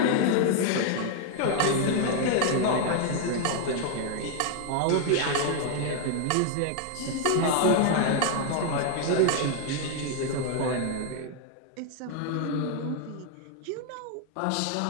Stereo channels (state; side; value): different; both; correlation 0.00